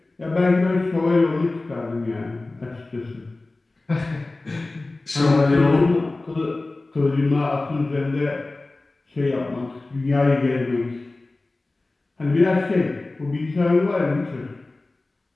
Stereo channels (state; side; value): quieter; right; 3.1 dB